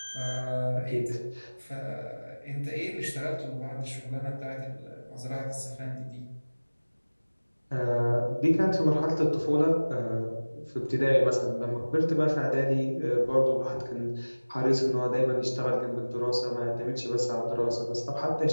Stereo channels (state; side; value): inverted; both; correlation -1.00